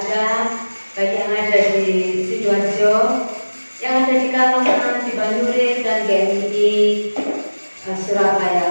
baik yang ada di Sidoarjo, yang ada di Kalongan, di Banyurit dan GMI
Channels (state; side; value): inverted; both; correlation -1.00